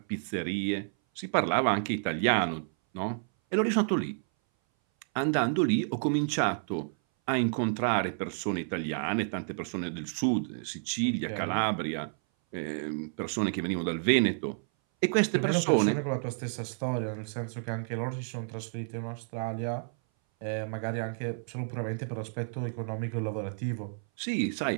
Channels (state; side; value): silent; left; 58 dB below the other